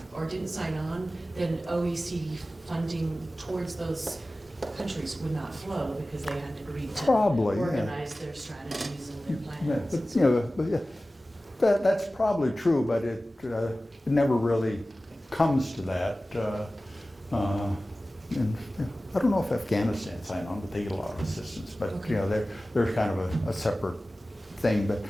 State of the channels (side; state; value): both; normal; correlation 0.96